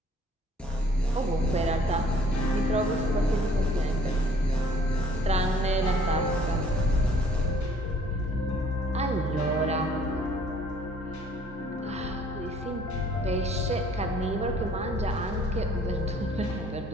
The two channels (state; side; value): normal; both; correlation 0.58